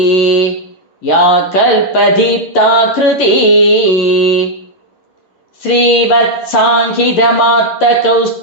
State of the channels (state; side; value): late; right; 11 ms